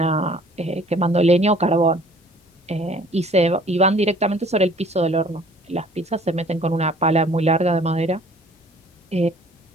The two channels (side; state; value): both; normal; correlation 0.53